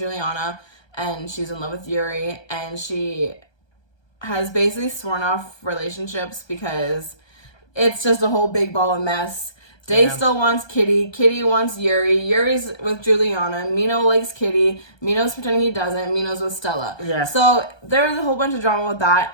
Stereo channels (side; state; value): right; late; 1.2 ms